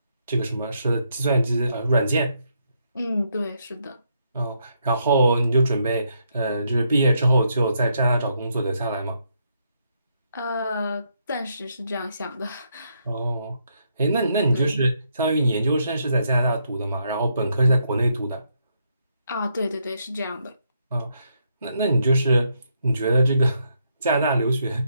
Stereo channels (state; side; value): inverted; both; correlation -0.76